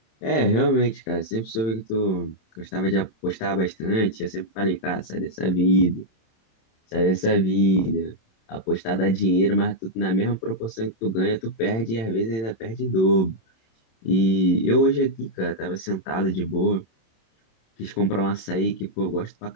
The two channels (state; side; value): late; right; 27 ms